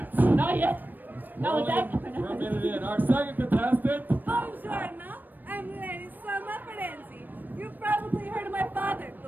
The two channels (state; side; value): late; left; 0.090 ms